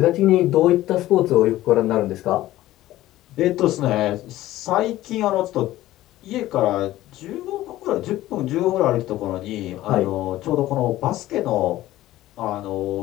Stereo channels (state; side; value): quieter; right; 15.4 dB